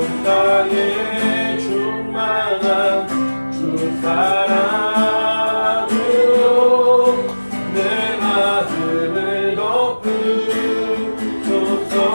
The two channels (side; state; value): both; inverted; correlation -1.00